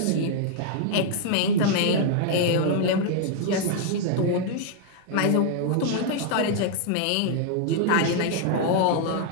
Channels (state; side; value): different; both; correlation 0.00